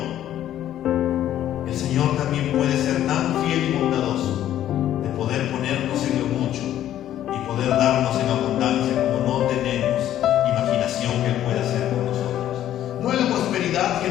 el Señor también puede ser tan fiel y bondadoso de poder ponernos en lo mucho y poder darnos en abundancia como no tenemos imaginación que Él puede hacer con nosotros. No es la prosperidad que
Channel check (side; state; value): right; quieter; 11.9 dB